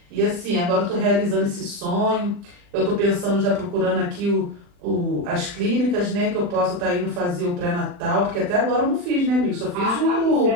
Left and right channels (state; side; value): late; left; 40 ms